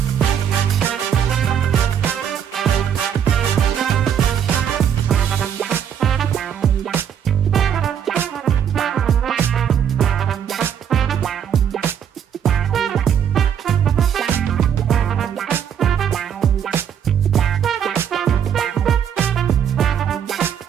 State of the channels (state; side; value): quieter; left; 8.6 dB